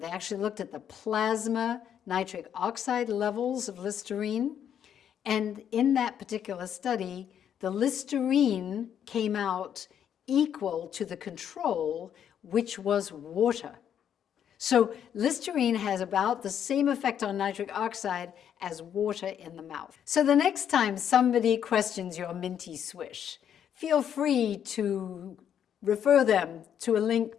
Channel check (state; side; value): quieter; right; 9.1 dB